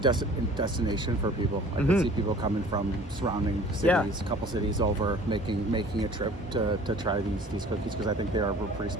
for people. I can see people coming from surrounding cities, a couple cities over, making a trip to try these cookies, because I think they are pretty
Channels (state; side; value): normal; both; correlation 0.48